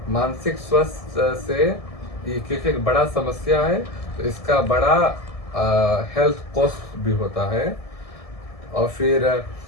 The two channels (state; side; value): late; right; 1.7 ms